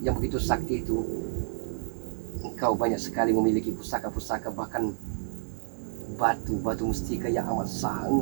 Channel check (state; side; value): silent; left; digital silence